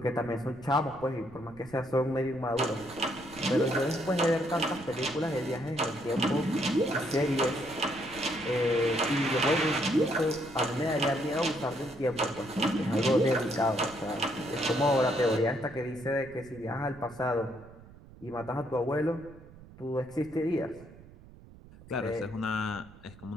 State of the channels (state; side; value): noise; right; rumble, 20 dB below the sound